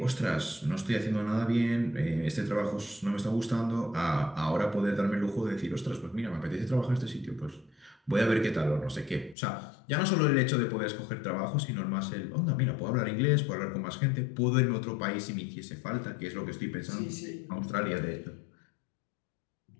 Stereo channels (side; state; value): right; drops out; at 9.3 s